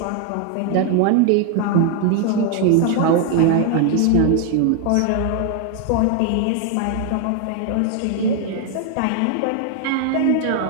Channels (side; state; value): both; different; correlation 0.01